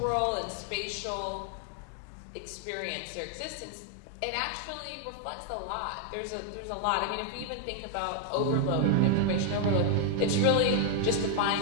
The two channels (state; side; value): different; both; correlation 0.00